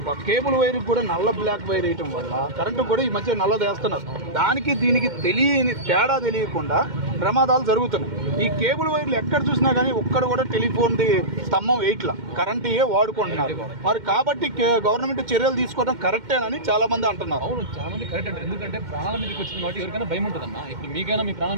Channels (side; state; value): left; late; 2.1 ms